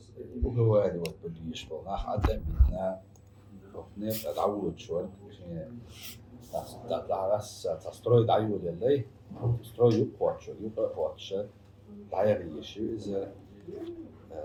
وجواري والبليش بالناخ عدم بيتنا وفنيت أدعوه شوال تعرس تستروي دعيو للي تستروي يقوى قواتش دعيري شو إذا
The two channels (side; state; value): both; identical; correlation 1.00